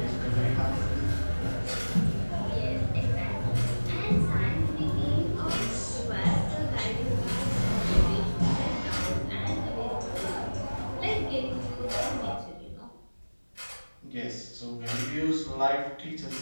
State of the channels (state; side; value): inverted; both; correlation -1.00